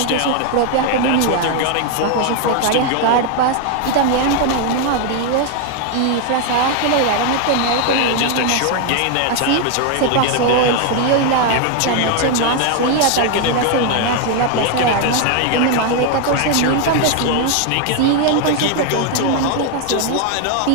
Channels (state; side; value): different; both; correlation 0.01